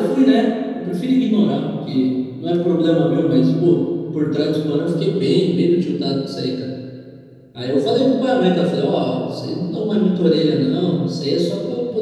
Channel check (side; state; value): both; identical; correlation 1.00